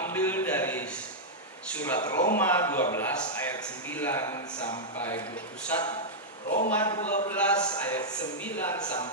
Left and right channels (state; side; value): normal; both; correlation -0.06